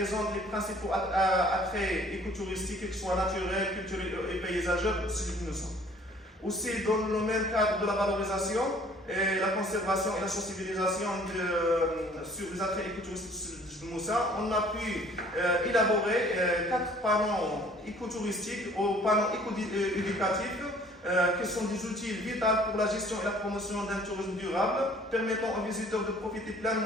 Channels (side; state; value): both; normal; correlation 0.55